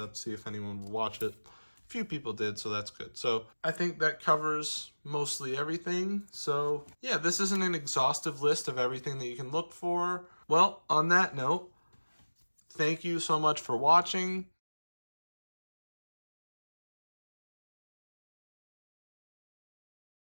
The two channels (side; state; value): both; inverted; correlation -1.00